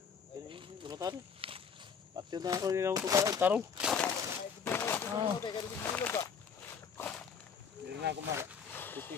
Lumatan. Pati na ako nilang tarong. Hindi na ako mara.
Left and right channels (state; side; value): quieter; right; 6.4 dB